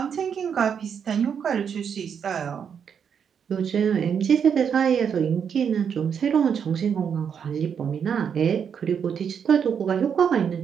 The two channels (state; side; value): quieter; left; 7.4 dB